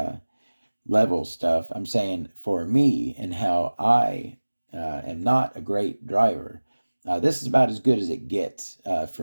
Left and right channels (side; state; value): both; inverted; correlation -1.00